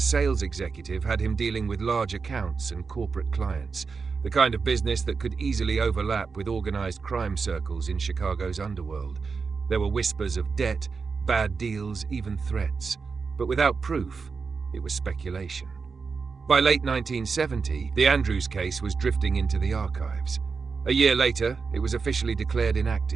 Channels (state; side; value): quieter; left; 5.0 dB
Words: executive had him dealing with large accounts and corporate clients, the kind of business that could easily overlap with organized crime circles in Chicago's underworld. There were whispers of debt, bad deals, even threats. But without proof, it was speculation. By late 1970, the Andrews case was drifting into the archives. A year later, it was officially declared